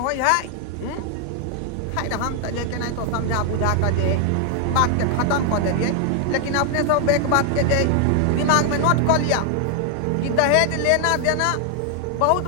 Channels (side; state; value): both; different; correlation 0.00